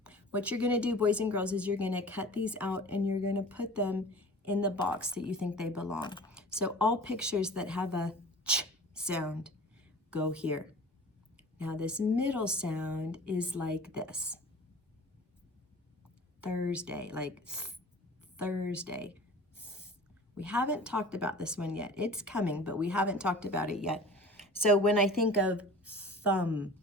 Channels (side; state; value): both; normal; correlation 0.41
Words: What you're gonna do, boys and girls, is you're gonna cut these out and you're gonna put them in the box that you think they belong. So all pictures that have a ch sound go here. Now this middle sound is like this. Thursday, like Thursday. We haven't talked about this one yet. It's coming, but we haven't talked about it yet. So when I think of thumb,